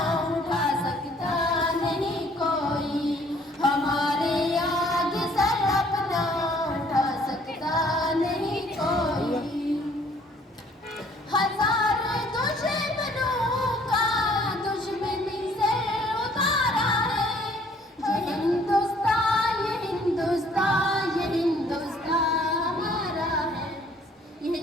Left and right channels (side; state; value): both; normal; correlation 0.60